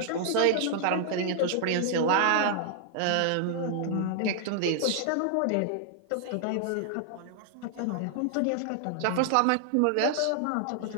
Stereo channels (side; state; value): both; different; correlation 0.00